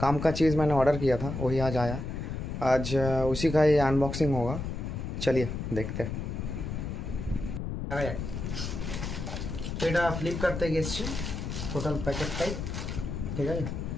काम का चीज़ मैंने ऑर्डर किया था, वही आज आया। आज उसी का ही अनबॉक्सिंग होगा। चलिए देखते हैं। এটা ফ্লিপকার্ট থেকে এসছে টোটাল প্যাকেটটাই, ঠিক আছে।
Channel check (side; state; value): left; noise; rumble, 5 dB below the sound